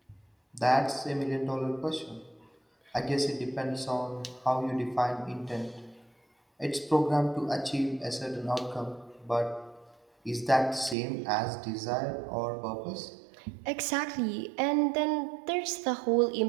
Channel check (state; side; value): drops out; left; at 11.0 s